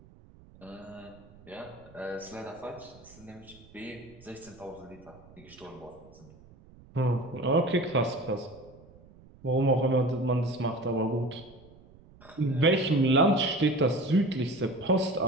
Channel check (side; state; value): right; noise; rumble, 24 dB below the sound